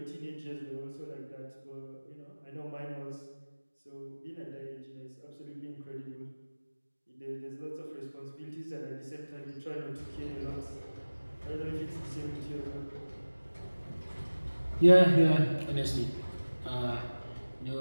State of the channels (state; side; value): inverted; both; correlation -1.00